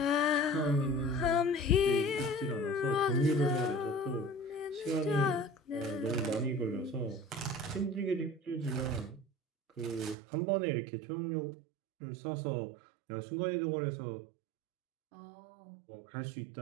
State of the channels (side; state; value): left; drops out; at 10.2 s